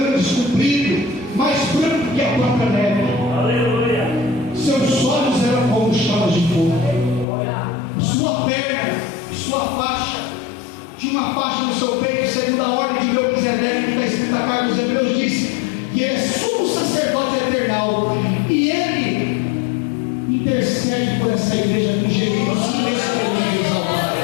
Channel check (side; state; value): right; drops out; at 7.2 s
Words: compridos, mais brancos que a própria neve. Seus olhos eram como chamas de fogo. Sua perna, sua faixa, tinha uma faixa no seu peito, segundo a ordem de Melquisedeque, que está escrito na carta dos Hebreus, diz que ele é sumo sacerdote eternal, e ele intercede por essa igreja com gemidos inexprimíveis ao Pai.